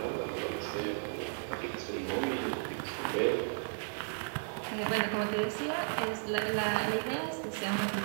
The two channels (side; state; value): left; silent; digital silence